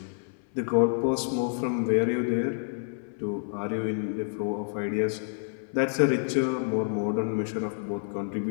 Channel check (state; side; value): silent; right; 59 dB below the other